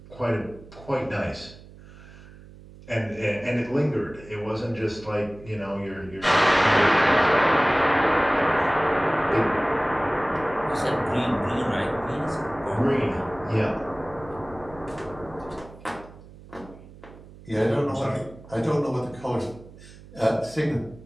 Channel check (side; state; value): right; noise; hum, 20 dB below the sound